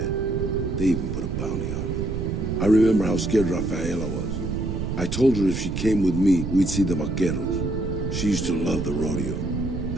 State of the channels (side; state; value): right; noise; rumble, 4 dB below the sound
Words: They even put a bounty on me. I remember how scared Rafaela was. I told her if she came with me, we'd see the vaqueros. She used to love the rodeo,